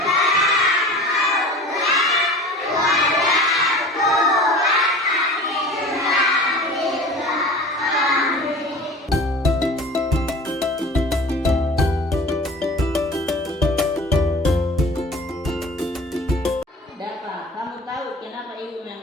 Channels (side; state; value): both; normal; correlation 0.40